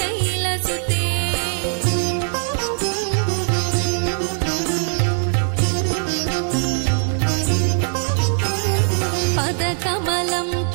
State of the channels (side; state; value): left; silent; 63 dB below the other